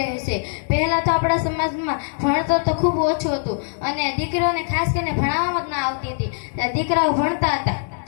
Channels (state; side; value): silent; right; digital silence